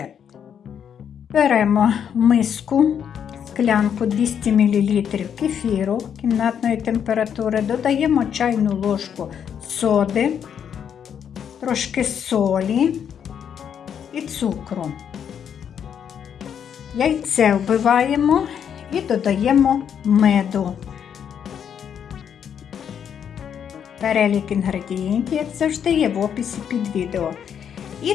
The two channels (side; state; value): right; quieter; 8.3 dB